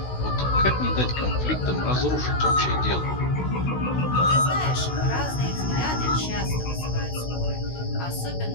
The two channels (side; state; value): right; late; 16 ms